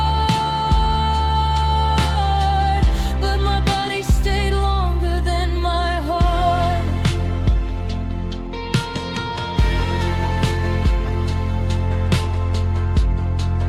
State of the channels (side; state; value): both; identical; correlation 1.00